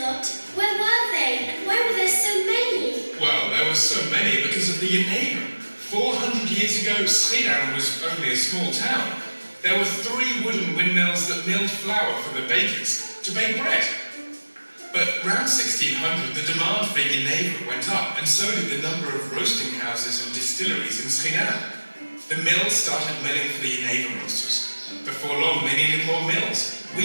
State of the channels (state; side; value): inverted; both; correlation -1.00